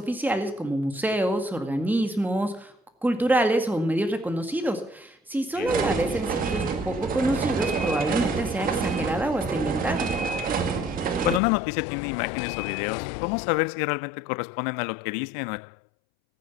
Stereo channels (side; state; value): right; drops out; at 11.4 s